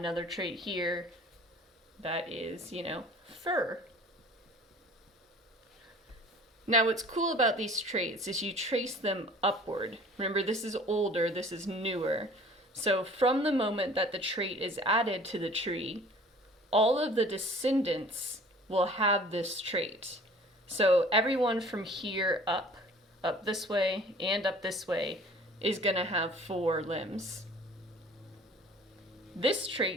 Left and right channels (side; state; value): both; normal; correlation 0.48